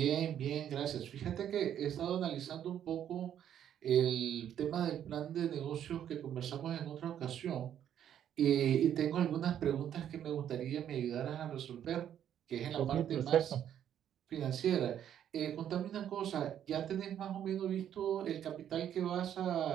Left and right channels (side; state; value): left; quieter; 10.0 dB